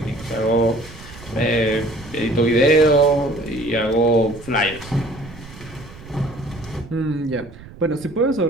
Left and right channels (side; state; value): right; noise; rumble, 18 dB below the sound